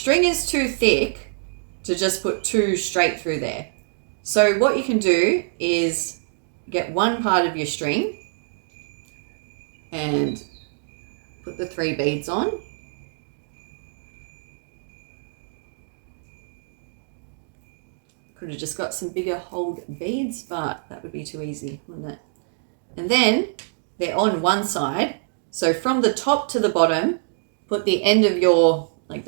is too thick to just put 2 straight through there. So what you can do is get one part of your string and put the 3 beads on. Could have just got some bigger hold beads, but that would be too easy, wouldn't it? And then they're on one side. So from the top to the bottom, put the end of your, like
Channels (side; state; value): left; silent; digital silence